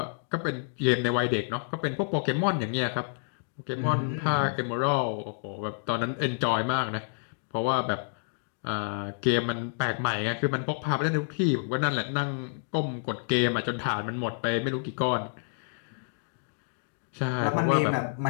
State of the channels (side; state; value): right; silent; digital silence